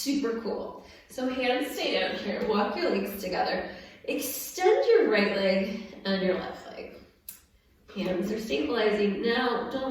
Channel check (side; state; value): both; identical; correlation 1.00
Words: cool. So hands stay down here, walk your legs together. Extend your right leg and your left leg. Hands are stabilizing. Now,